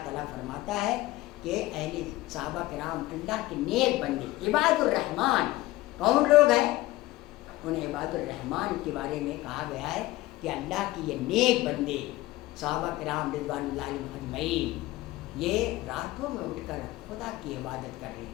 تعالیٰ فرماتا ہے کہ اہل صحابہ کرام اللہ کے نیک بندے عباد الرحمن کون لوگ ہیں؟ ان عباد الرحمن کے بارے میں کہا گیا ہے کہ اللہ کی یہ نیک بندے صحابہ کرام رضوان اللہ علیہم اجمعین یہ راتوں میں اٹھ کر خدا کی عبادت کر رہے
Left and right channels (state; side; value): quieter; right; 17.9 dB